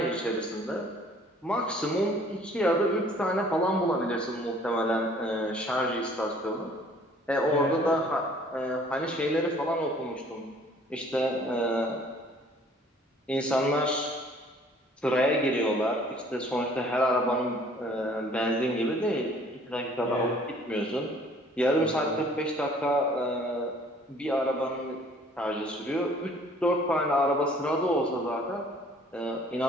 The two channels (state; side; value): normal; both; correlation 0.55